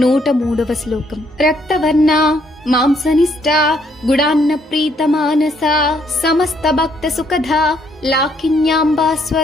103వ శ్లోకం. రక్తవర్ణ మాంసనిష్ట గుడాన్న ప్రీత మానస సమస్త భక్త సుఖద లాకిన్యాంబా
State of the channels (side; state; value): both; normal; correlation 0.70